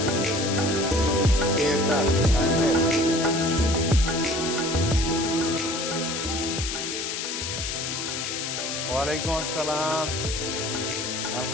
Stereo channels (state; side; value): noise; left; hiss, 4 dB below the sound